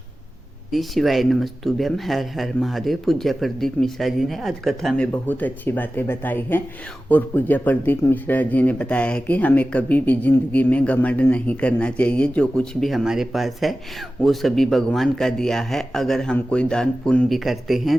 श्री शिवाय नमस्तुभ्यम। हर हर महादेव। पूज्य प्रदीप मिश्रा जी ने आज कथा में बहुत अच्छी बातें बताई हैं और पूज्य प्रदीप मिश्रा जी ने बताया है कि हमें कभी भी जिंदगी में घमंड नहीं करना चाहिए। जो कुछ भी हमारे पास है वो सभी भगवान का दिया है। अगर हम कोई दान पुण्य भी करते हैं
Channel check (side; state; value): both; normal; correlation 0.95